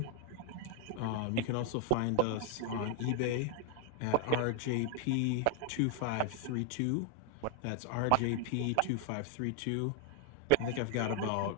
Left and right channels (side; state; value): both; different; correlation 0.00